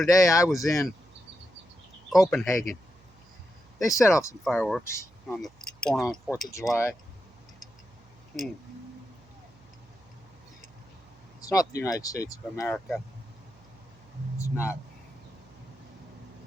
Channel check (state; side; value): noise; right; hum, 29 dB below the sound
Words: I was in Copenhagen. They set off some fireworks on the born on 4th of July. It's not the United States of America. It's not.